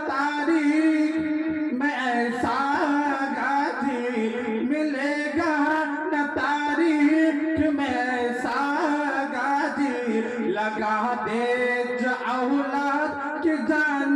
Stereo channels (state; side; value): identical; both; correlation 1.00